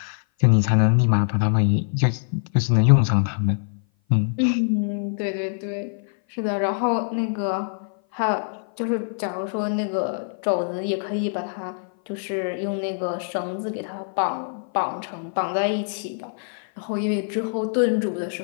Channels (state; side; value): silent; right; 57 dB below the other